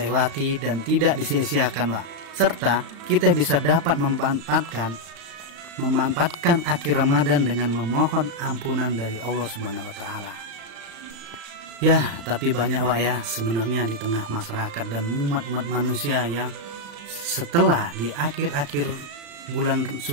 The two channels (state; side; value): late; left; 35 ms